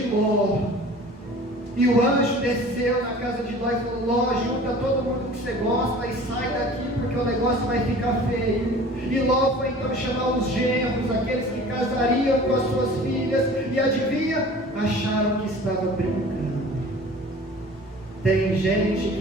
Ló. E o anjo desceu na casa de Ló e falou: Ló, junta todo mundo que você gosta e sai daqui, porque o negócio vai ficar feio. E Ló foi então chamar os genros, aqueles que casariam com as suas filhas, e adivinha? Acharam que estava brincando. Tem gente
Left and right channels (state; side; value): normal; both; correlation 0.44